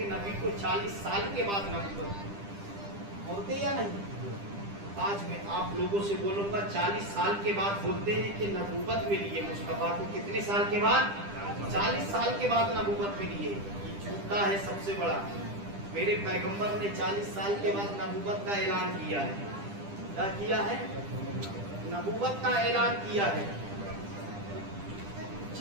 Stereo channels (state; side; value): late; left; 10 ms